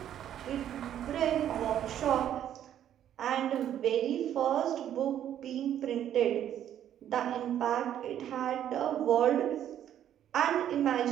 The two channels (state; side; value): quieter; left; 10.6 dB